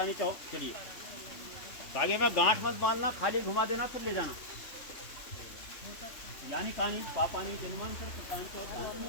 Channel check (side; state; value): right; late; 3.1 ms